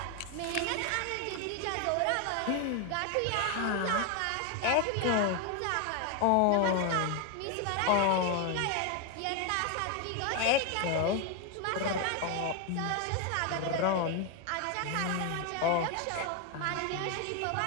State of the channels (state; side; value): different; both; correlation 0.01